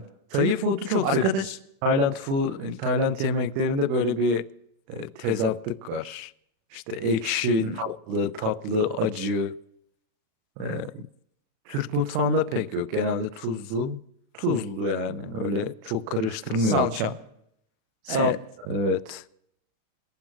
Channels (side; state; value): left; late; 36 ms